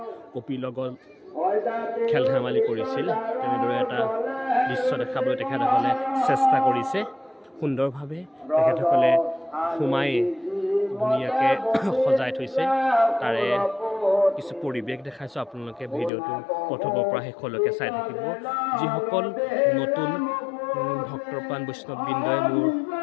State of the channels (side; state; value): right; drops out; at 16.1 s